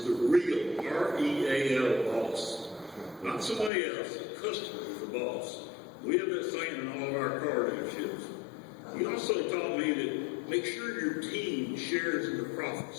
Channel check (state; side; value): drops out; right; at 3.7 s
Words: the real R-E-A-L boss, not somebody else. The customer is the boss. We have that saying in all of our car dealerships. He also taught me that make sure your team shares in the